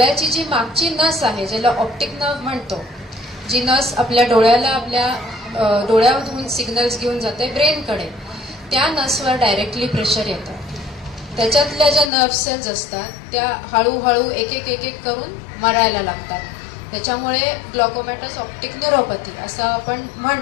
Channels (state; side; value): drops out; right; at 12.1 s